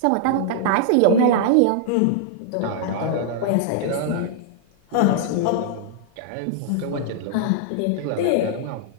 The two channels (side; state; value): both; different; correlation -0.01